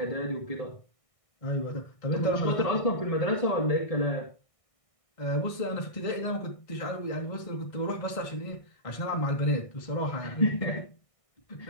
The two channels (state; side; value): late; right; 1.6 ms